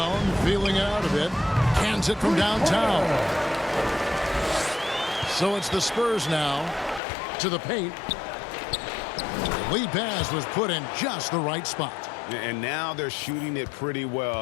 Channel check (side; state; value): right; drops out; at 7.0 s